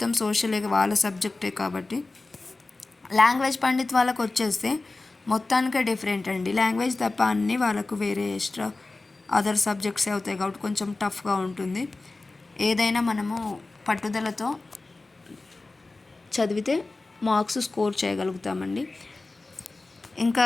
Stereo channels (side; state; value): right; quieter; 3.3 dB